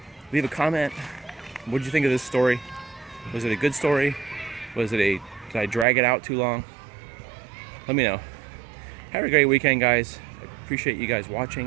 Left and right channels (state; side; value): drops out; left; at 5.9 s